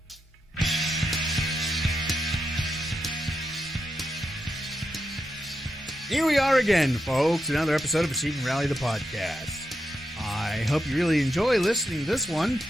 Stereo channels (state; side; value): normal; both; correlation 0.85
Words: Here we are again, folks. Another episode of Achieving Reality, the podcast. I hope you really enjoy listening to this one,